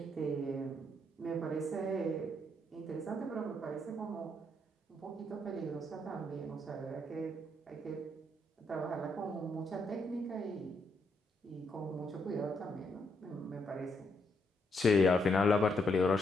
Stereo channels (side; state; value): both; normal; correlation 0.76